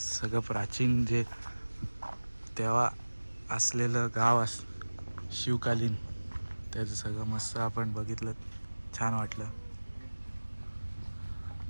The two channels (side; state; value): both; inverted; correlation -1.00